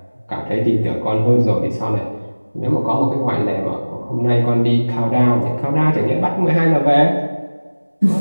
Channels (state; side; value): inverted; both; correlation -1.00